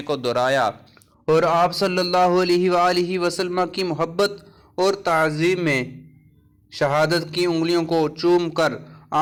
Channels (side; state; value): both; identical; correlation 1.00